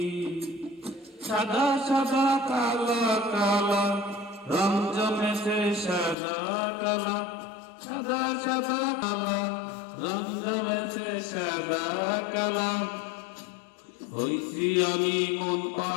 সাদা সাদা কালা কালা রং জমেছে সাদা কালা, সাদা সাদা কালা রং জমেছে সাদা কালা। হইছি আমি মন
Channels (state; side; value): drops out; right; at 6.2 s